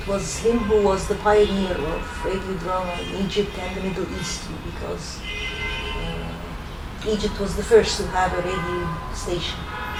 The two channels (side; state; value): both; identical; correlation 1.00